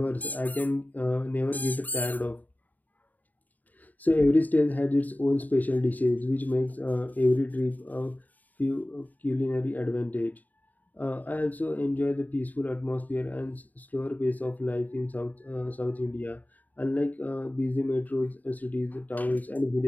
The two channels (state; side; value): late; right; 0.080 ms